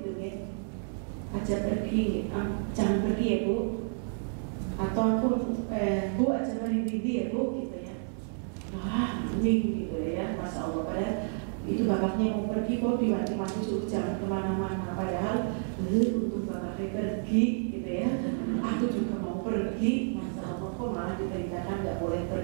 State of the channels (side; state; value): left; silent; 58 dB below the other